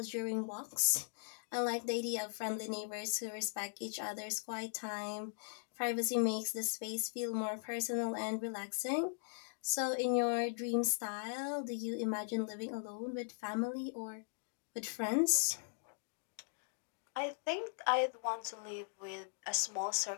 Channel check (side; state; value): right; silent; digital silence